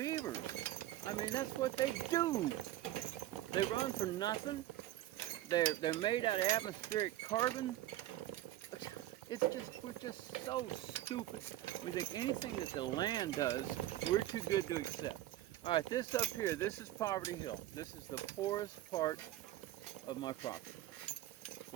I mean, that's what they do. They run for nothing. They're made out of atmospheric carbon. It's just, we're just so stupid. We think anything that the land does, we're too good to accept. All right, this up here, this is Poverty Hill. This is the poorest part of my property.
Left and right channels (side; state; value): left; quieter; 14.4 dB